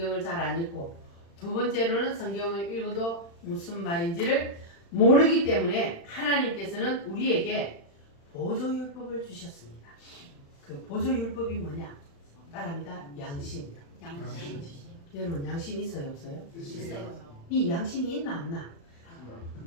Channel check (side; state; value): right; late; 35 ms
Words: 잘 안 읽고, 두 번째로는 성경을 읽어도 무슨 말인지를 모르기 때문에 하나님께서는 우리에게 보조율법을 주셨습니다. 그 보조율법이 뭐냐? 따라합니다. 양심. 양심. 여러분 양심 있어요 없어요? 있어요. 이 양심이 있나 없나?